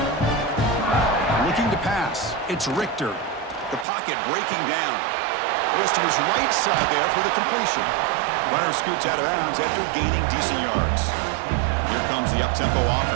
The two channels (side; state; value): left; drops out; at 3.9 s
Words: Looking to pass. It's Richter. The pocket breaking down. Goes to his right side there for the completion. Runner scoots out of bounds after gaining decent yards. Here comes the up-tempo